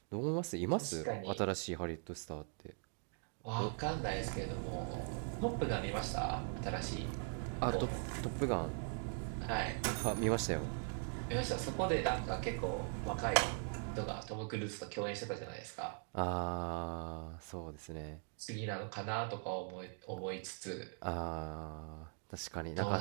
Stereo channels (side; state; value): left; silent; 50 dB below the other